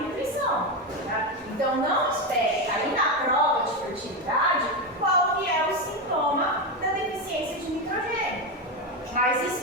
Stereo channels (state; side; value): normal; both; correlation 0.12